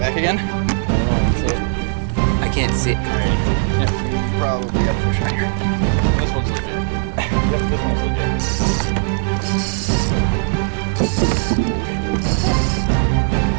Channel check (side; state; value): left; silent; digital silence